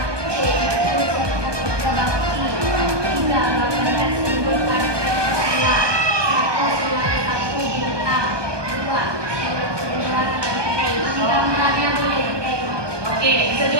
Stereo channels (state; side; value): late; left; 1.2 ms